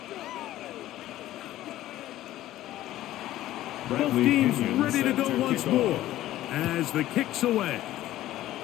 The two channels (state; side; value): quieter; right; 14.5 dB